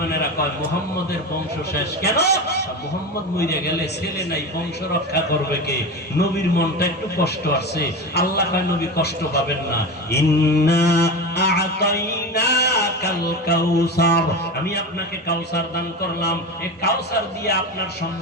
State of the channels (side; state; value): both; normal; correlation 0.24